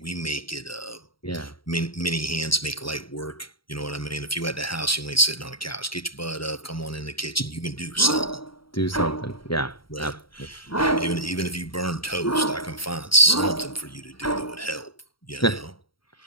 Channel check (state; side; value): late; right; 0.74 ms